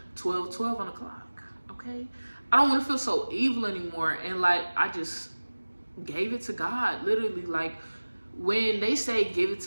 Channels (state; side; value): inverted; both; correlation -1.00